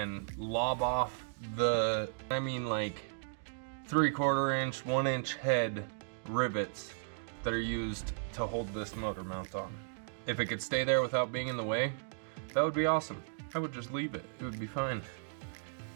lob off the, like 3/4 inch, 1 inch head rivets that are used to hold this motor mount on. If it could stay there without being in the way, that would be awesome. I would just leave it, it would be fine.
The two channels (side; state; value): left; silent; digital silence